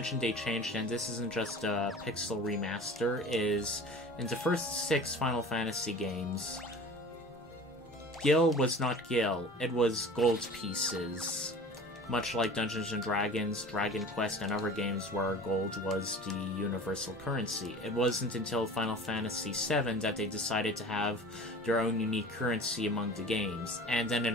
they changed, and this isn't just a pixel remaster, is in the first 6 Final Fantasy games, gil was not gil, it was gold pieces. Much like Dungeons & Dragons, Dragon Quest, and other games where gold was the universal currency. It wasn't until Final Fantasy VII that they decided to have their own unique currency among the games, and then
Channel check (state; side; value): normal; both; correlation 0.41